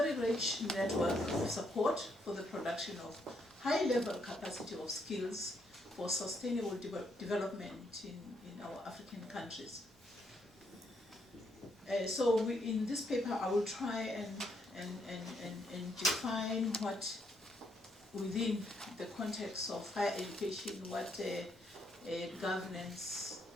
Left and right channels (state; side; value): normal; both; correlation 0.74